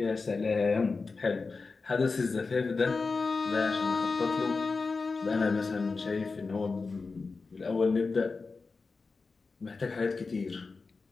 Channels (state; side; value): quieter; right; 4.2 dB